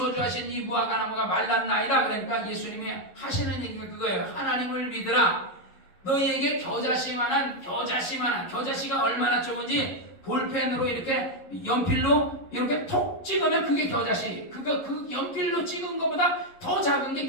이 무화과 나무가 말랐나이다. 그러니까 예수님이 하시는 얘기가 그거예요. 하나님을 믿으라. 너희에게 겨자씨가 얼마나 좋은지 볼펜으로 이렇게 연필로 이렇게 톡 찍으면 그게 겨자씨. 그 연필로 찍은 것보다 더 작은 게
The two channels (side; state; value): right; late; 11 ms